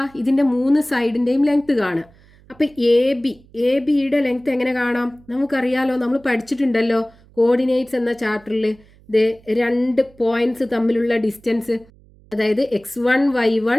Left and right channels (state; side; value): noise; right; hum, 27 dB below the sound